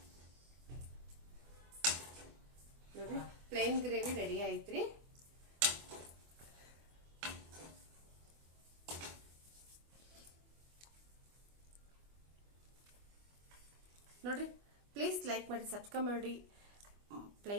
ನೋಡ್ರಿ ಪ್ಲೇನ್ ಗ್ರೇವಿ ರೆಡಿ ಆಯ್ತ್ರಿ. ನೋಡ್ರಿ ಪ್ಲೀಸ್ ಲೈಕ್ ಮಾಡಿ, ಸಬ್ಸ್ಕ್ರೈಬ್ ಮಾಡಿ.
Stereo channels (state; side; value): late; left; 24 ms